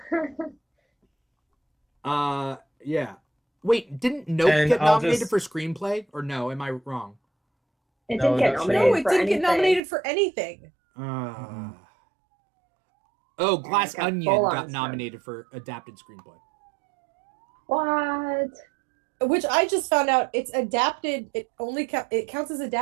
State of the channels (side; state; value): left; drops out; at 9.8 s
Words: Yeah. Wait, didn't Nope get nominated for screenplay, or no? Am I wrong? It didn't get nominated. No, it didn't get nominated for anything. Oh, Glass Onion got nominated for adapted screenplay. What? Which I just found out it's adapted. It only it counts as